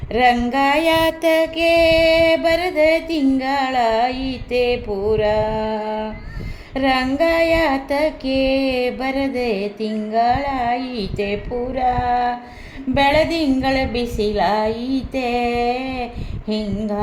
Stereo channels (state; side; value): identical; both; correlation 1.00